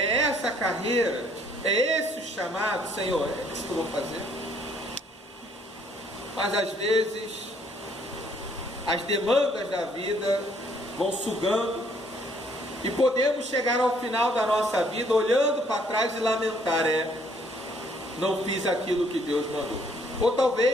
essa carreira, é esse o chamado, Senhor, é isso que eu vou fazer. Mas às vezes as demandas da vida vão sugando e podemos chegar ao final da nossa vida olhando para trás e lamentar, não fiz aquilo que Deus mandou. Ou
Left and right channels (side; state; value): both; normal; correlation 0.64